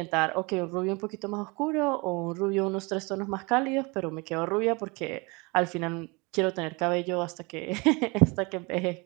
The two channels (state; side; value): quieter; left; 27.6 dB